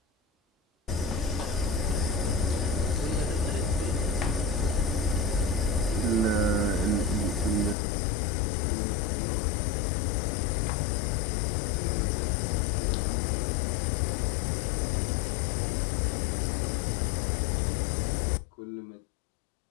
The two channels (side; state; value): right; drops out; at 7.8 s